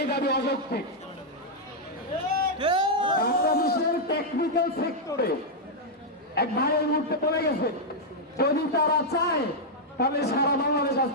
দাবি অযৌক্তিক। বাংলাদেশের টেকনিক্যাল সেক্টরে এক ভাই এই মুহূর্তে পড়ে গেছে, যদি তারা চায় তাহলে সারা বাংলাদেশ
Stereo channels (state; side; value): normal; both; correlation -0.03